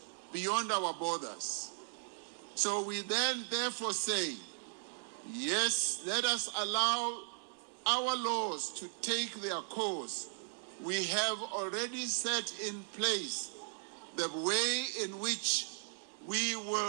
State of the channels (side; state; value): left; silent; digital silence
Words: beyond our borders. So we then therefore say, yes, let us allow our laws to take their course. We have already set in place the way in which we